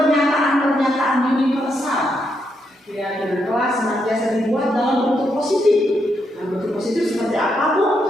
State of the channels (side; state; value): both; normal; correlation 0.79